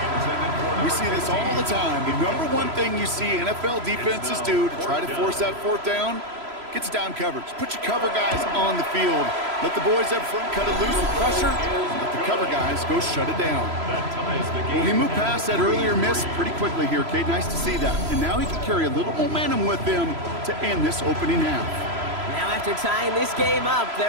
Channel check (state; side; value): late; left; 3.0 ms